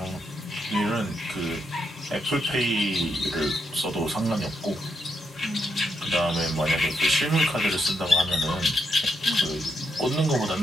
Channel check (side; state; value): both; normal; correlation 0.80